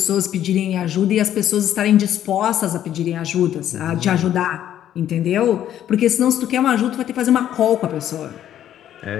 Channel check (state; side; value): quieter; right; 11.1 dB